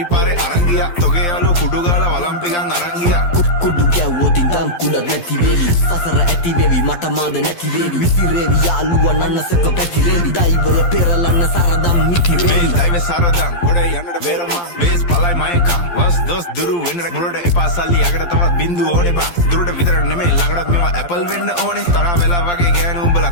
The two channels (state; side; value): late; right; 12 ms